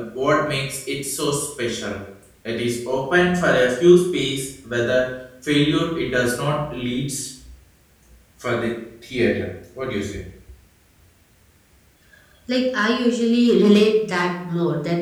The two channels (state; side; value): identical; both; correlation 1.00